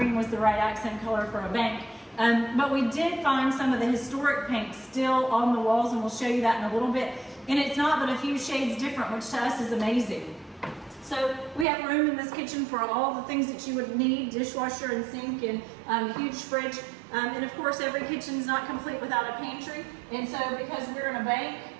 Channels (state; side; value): drops out; left; at 11.7 s